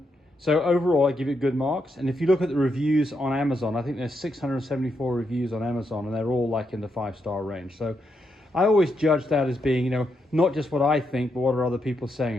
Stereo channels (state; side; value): normal; both; correlation 0.81